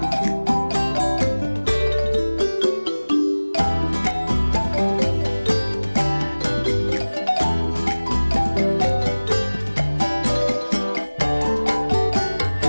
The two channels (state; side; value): inverted; both; correlation -1.00